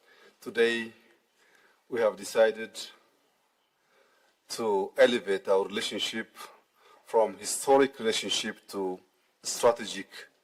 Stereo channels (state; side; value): identical; both; correlation 1.00